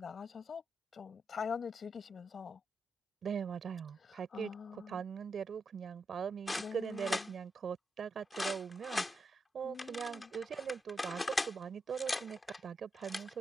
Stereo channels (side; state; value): both; normal; correlation 0.84